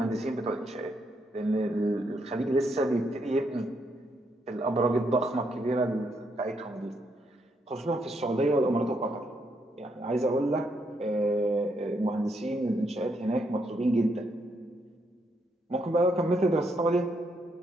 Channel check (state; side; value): normal; both; correlation 0.76